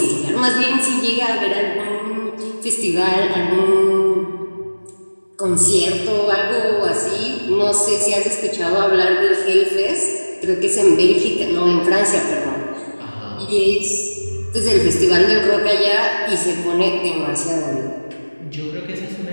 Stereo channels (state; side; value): inverted; both; correlation -1.00